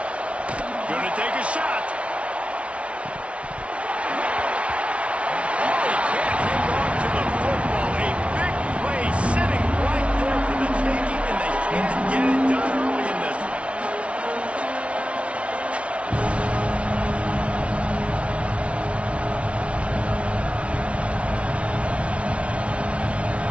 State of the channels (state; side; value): late; left; 0.062 ms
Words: Gonna take a shot. Oh, he can't hang on to the football. A big play sitting right there for the taking, and they can't get it done early in this one.